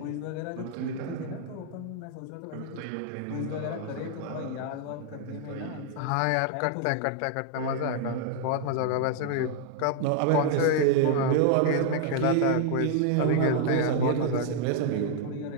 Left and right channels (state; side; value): different; both; correlation 0.00